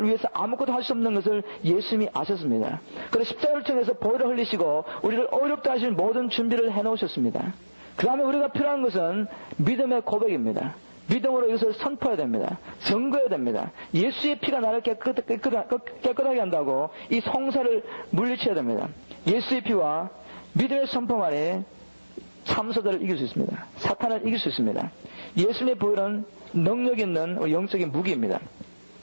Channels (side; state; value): both; inverted; correlation -1.00